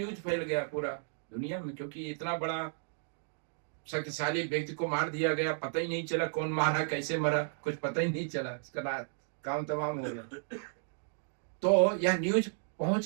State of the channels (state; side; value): silent; left; digital silence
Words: फैल गया पूरा दुनिया में, क्योंकि इतना बड़ा शक्तिशाली व्यक्ति को मार दिया गया, पता ही नहीं चला कौन मारा, कैसे मरा, कुछ पता ही नहीं चला, इसका काम तमाम हो गया। तो यह न्यूज